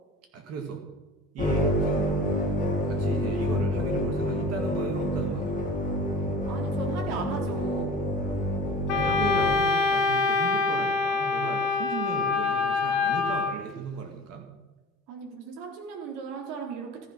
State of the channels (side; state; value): both; normal; correlation 0.39